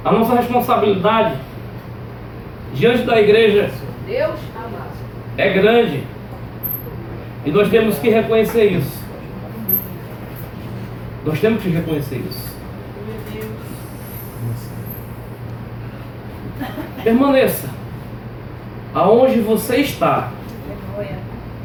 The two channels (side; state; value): both; identical; correlation 1.00